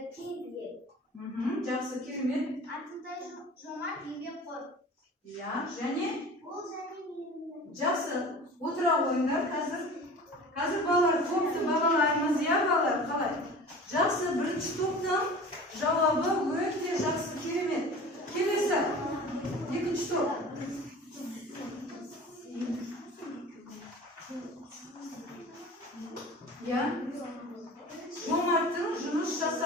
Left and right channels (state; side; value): normal; both; correlation 0.39